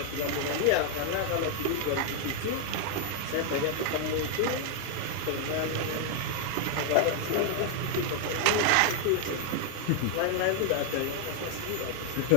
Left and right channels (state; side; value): different; both; correlation 0.00